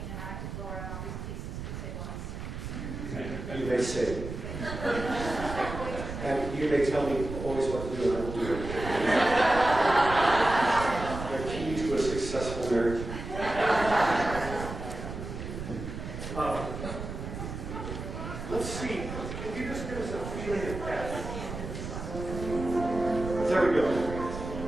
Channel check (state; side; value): noise; right; rumble, 7 dB below the sound